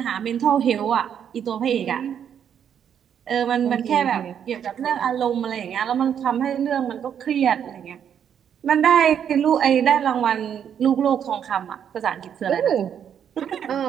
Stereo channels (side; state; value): left; quieter; 8.6 dB